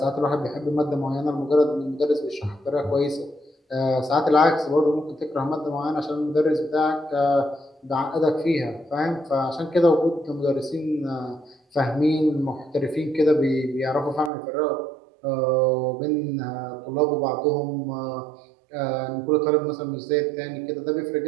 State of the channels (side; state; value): left; drops out; at 14.3 s